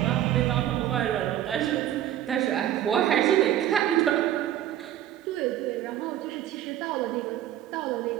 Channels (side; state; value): left; quieter; 11.9 dB